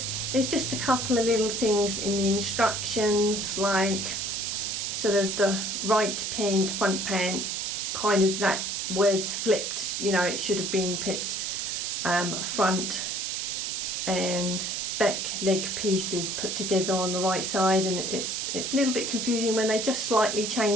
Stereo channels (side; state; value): right; noise; hiss, 2 dB below the sound